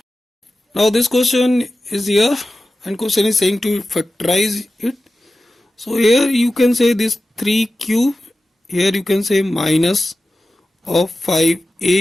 Now this question is here and question is saying to factorize it. So here you can say this 3 cube, here you can say minus of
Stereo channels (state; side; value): normal; both; correlation 0.94